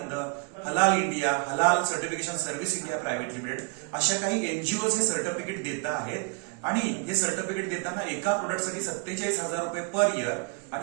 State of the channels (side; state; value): left; quieter; 36.0 dB